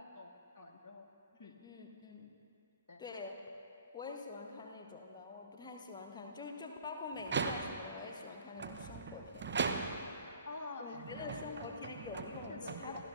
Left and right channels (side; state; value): both; inverted; correlation -0.50